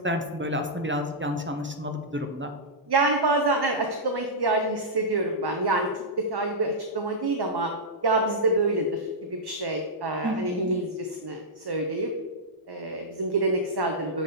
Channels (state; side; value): normal; both; correlation -0.10